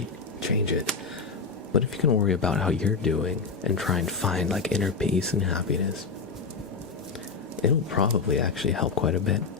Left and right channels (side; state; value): right; quieter; 5.0 dB